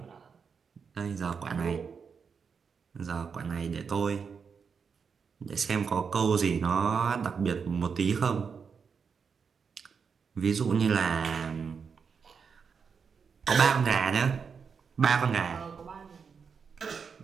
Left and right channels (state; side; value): quieter; left; 6.0 dB